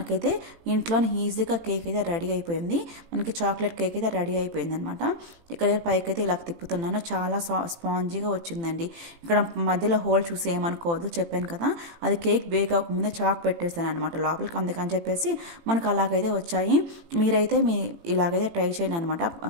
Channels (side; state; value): left; late; 18 ms